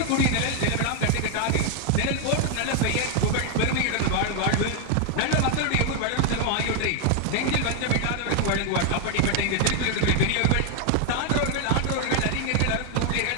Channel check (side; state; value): both; different; correlation 0.01